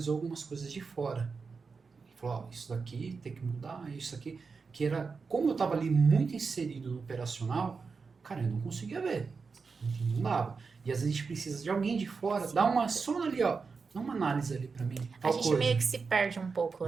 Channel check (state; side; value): quieter; left; 4.9 dB